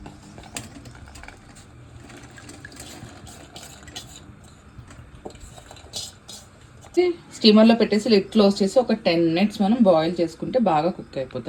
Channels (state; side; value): identical; both; correlation 1.00